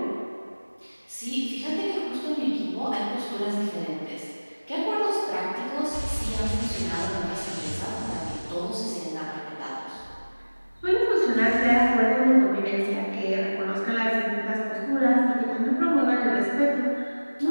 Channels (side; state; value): both; inverted; correlation -1.00